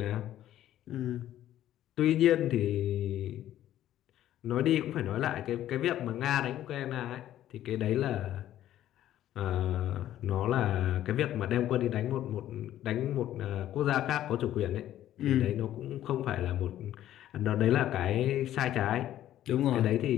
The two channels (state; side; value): quieter; right; 12.5 dB